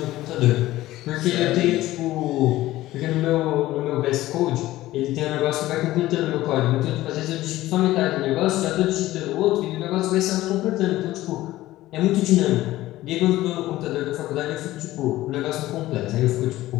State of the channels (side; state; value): right; quieter; 16.2 dB